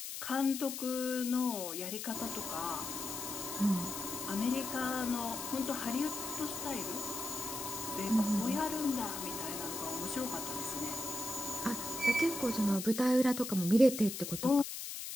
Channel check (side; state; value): left; noise; hiss, 6 dB below the sound